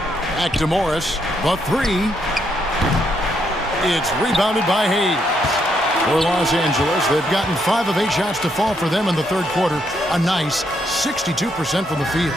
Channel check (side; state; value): both; normal; correlation 0.76